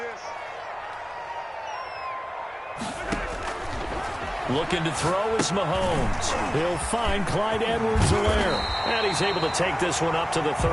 Looking to throw is Mahomes. He'll find Clyde Edwards-Helaire. And he's able to take this one up to the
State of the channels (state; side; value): identical; both; correlation 1.00